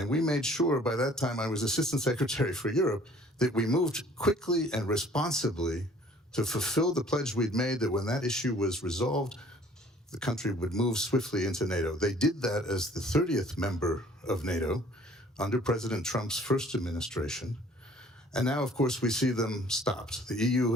we made sure, by that time I was Assistant Secretary for Europe, that we moved quickly and responsibly to fulfill the pledge we'd made that when that issue was resolved, the country would move swiftly into NATO. They did that as the 30th member of NATO under President Trump's first administration. And now, of course, we see them stopped. The EU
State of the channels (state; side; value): normal; both; correlation 0.54